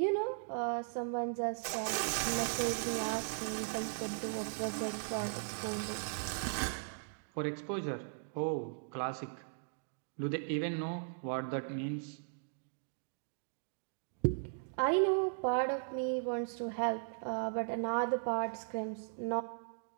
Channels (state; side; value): silent; left; digital silence